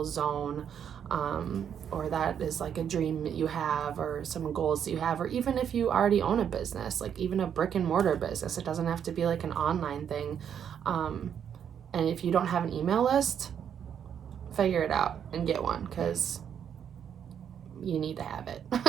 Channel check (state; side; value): quieter; left; 8.5 dB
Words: zone, or that is a dream that you have, or some goals that you have, or even if you already own a business, even a brick and mortar business. It doesn't have to be an online thing. And if you don't have an email list, figure it out and get one, because you need to have it.